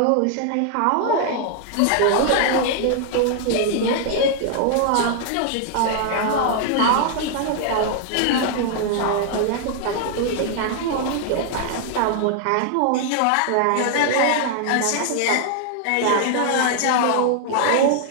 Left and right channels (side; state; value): both; different; correlation 0.00